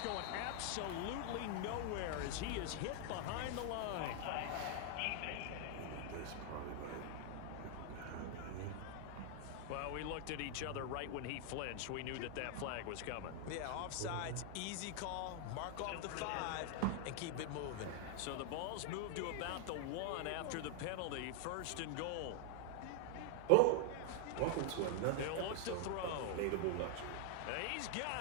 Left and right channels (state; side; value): different; both; correlation 0.00